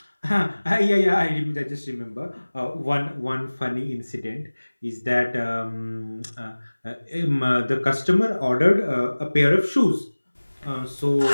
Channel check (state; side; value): inverted; both; correlation -1.00